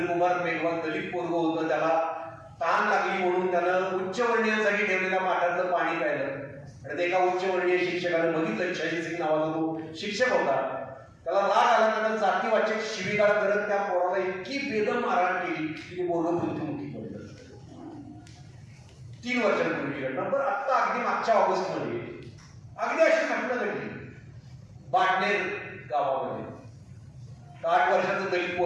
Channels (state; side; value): identical; both; correlation 1.00